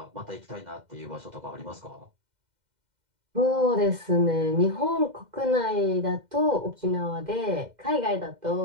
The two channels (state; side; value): late; left; 2.1 ms